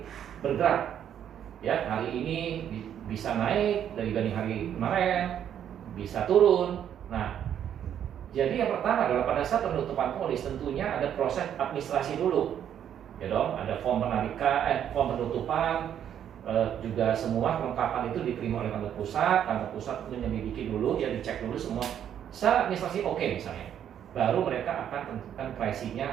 bergerak ya. Hari ini bisa naik dibanding hari kemarin, bisa turun. Nah jadi yang pertama adalah pada saat penutupan polis tentunya ada proses administrasi dulu ya dong. Ada form penarikan, form penutupan, juga semua kelengkapan itu diterima oleh kantor pusat. Kantor pusat menyelidiki dulu, ya dicek dulu semua secara administrasi oke misalnya, baru mereka akan tentukan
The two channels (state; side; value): quieter; left; 9.6 dB